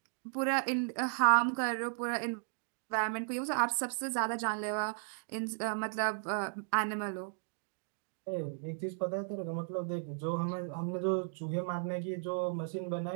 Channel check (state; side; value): silent; left; digital silence